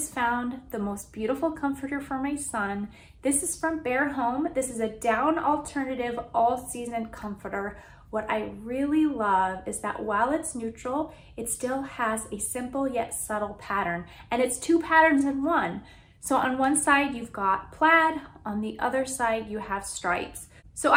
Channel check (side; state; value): both; identical; correlation 1.00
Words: found the most beautiful comforter for my son. This is from Bear Home. This is a down alternative all-season comforter. What I really love is that while it's neutral, it still has a simple yet subtle pattern, and it's two patterns in one. So on one side you've got plaid, on the other side you have stripes. So